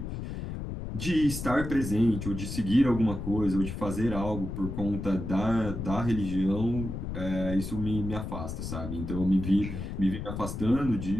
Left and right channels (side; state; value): left; noise; rumble, 6 dB below the sound